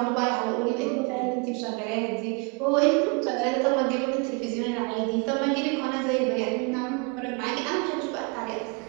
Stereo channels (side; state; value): left; quieter; 33.0 dB